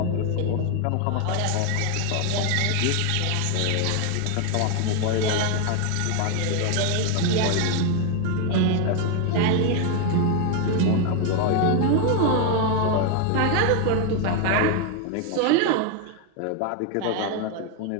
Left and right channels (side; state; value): both; different; correlation 0.01